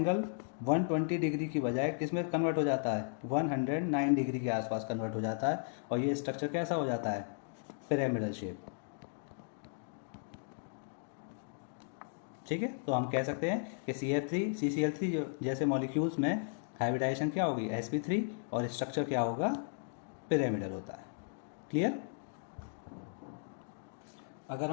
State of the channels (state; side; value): silent; right; digital silence